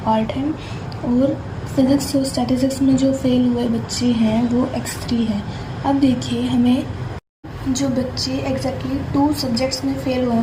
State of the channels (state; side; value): identical; both; correlation 1.00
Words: पार्ट है, और फिज़िक्स और स्टैटिस्टिक्स में जो फेल हुए बच्चे हैं वो x3 है। अब देखिए हमें जो बच्चे एग्जैक्टली 2 सब्जेक्ट्स में फेल हुए हैं